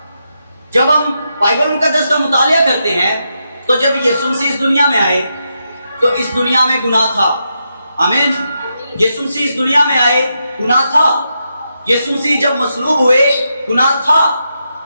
جب ہم بائبل مقدس کا مطالعہ کرتے ہیں تو جب یسوع مسیح اس دنیا میں آئے تو اس دنیا میں گناہ تھا، آمین۔ یسوع مسیح اس دنیا میں آئے گناہ تھا۔ یسوع مسیح جب مصلوب ہوئے گناہ تھا۔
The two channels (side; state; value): both; inverted; correlation -0.84